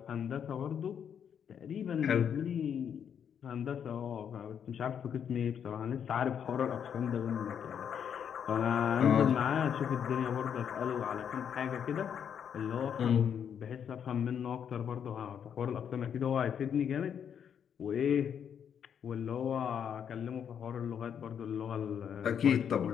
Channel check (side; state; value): right; quieter; 8.2 dB